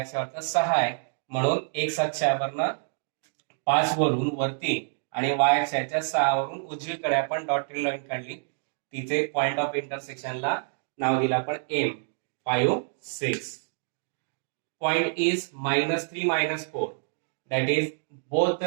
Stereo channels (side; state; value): left; silent; digital silence